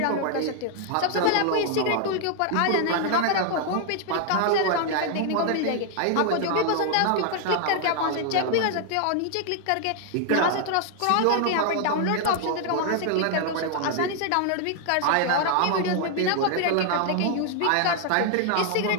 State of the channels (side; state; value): both; different; correlation 0.00